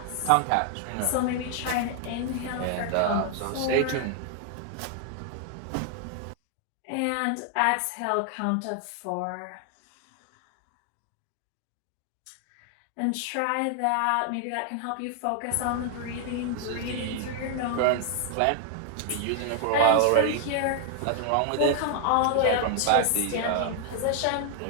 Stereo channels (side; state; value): both; different; correlation 0.00